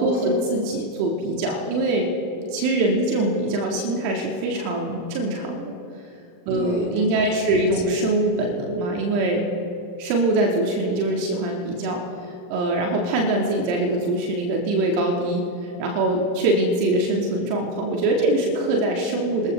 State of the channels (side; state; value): left; late; 40 ms